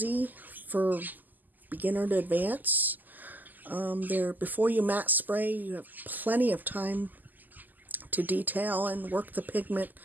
for beginner to advance. Before you matte spray, you have plenty of time to detail and work the pigment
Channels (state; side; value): late; left; 0.085 ms